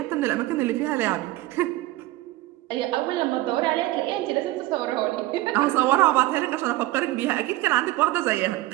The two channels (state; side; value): quieter; left; 17.6 dB